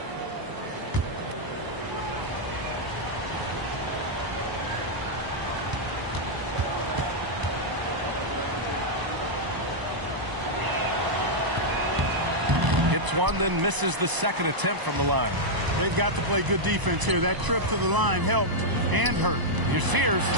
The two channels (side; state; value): left; late; 1.0 ms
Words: Hits one, then misses the second attempt from the line. They've got to play good defense here. That trip to the line helped and hurt. Here's Sears,